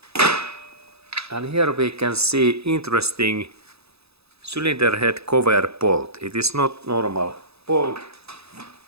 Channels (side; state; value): left; late; 0.79 ms